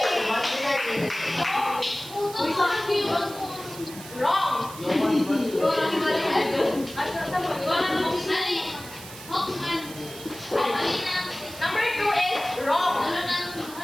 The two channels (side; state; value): right; noise; hiss, 15 dB below the sound